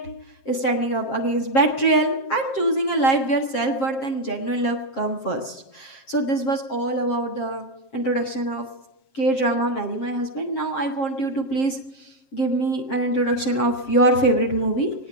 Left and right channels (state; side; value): late; right; 7.5 ms